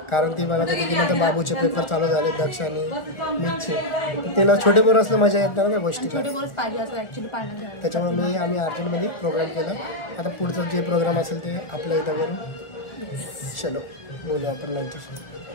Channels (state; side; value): late; right; 1.4 ms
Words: कारण ती मला होती की नंतर बाबूचे पेपर चालू झाले दक्ष आणि मीचे त्याला छोटे पोरं असलं मजा येत नाही ना त्या गोष्टी छोटे बोलच पाहिजे असं ॲक्च्युली पाण्यात घ्यायला त्याच्यामुळे आम्ही अर्जंटमध्ये प्रोग्राम केला आता पुढचं जे प्रोग्राम असेल ते आपल्या इथं करू चलो बोलू आपण नंतर